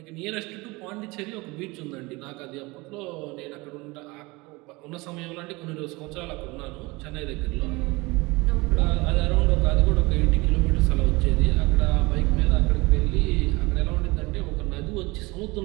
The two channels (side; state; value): left; quieter; 23.8 dB